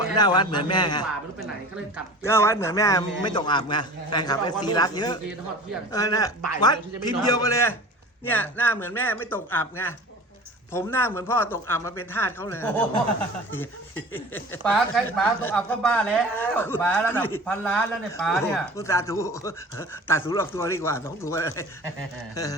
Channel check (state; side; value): normal; both; correlation 0.39